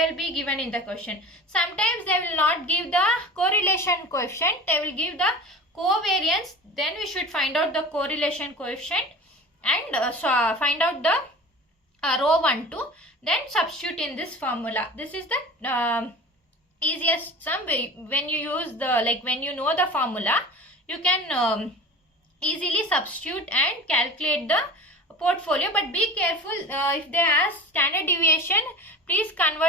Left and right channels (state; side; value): normal; both; correlation 0.36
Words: will be given in the question. Sometimes they will not give the correlation coefficient. They will give the covariance. Then we should find out the correlation coefficient and find out the row 1, 2. Then substitute in this formula. This is the easiest sum. When you use the, when you know the formula, you can easily substitute and calculate the portfolio. But be careful, if they ask standard deviation, please